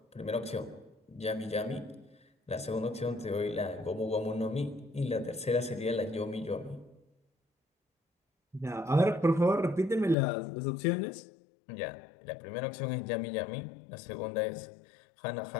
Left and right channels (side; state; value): right; drops out; at 10.2 s